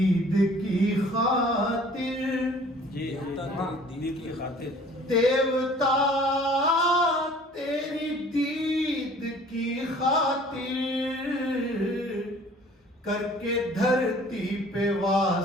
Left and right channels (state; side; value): normal; both; correlation 0.51